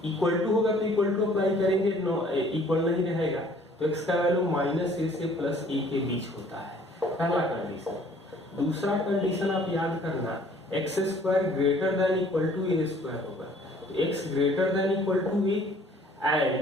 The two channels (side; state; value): both; normal; correlation 0.56